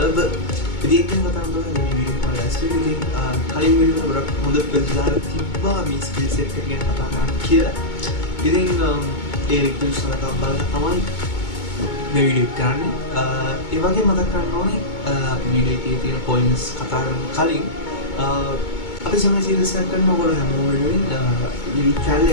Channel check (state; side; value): late; right; 2.2 ms